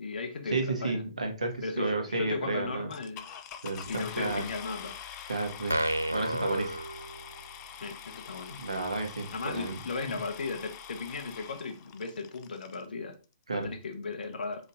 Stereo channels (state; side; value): inverted; both; correlation -0.70